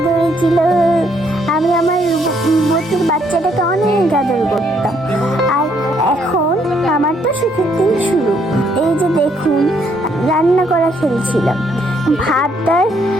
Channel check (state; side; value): normal; both; correlation 0.70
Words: ধরেছিল। আমি আমার রূপবতীর বাচ্চাটাকে অনেক আদর করতাম। আর এখন আমার তো সুখের দিন শুরু। এই যে দেখুন, রান্না করা খেলছিলাম, ভাত আর